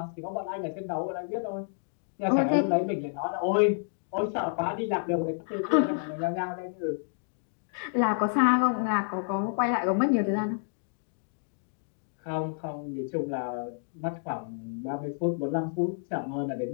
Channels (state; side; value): silent; right; digital silence